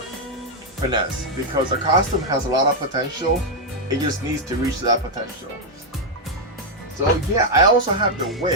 finesse because the costume has a lot of potential. It just needs to reach that potential. So yeah, I also have the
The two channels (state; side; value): normal; both; correlation 0.00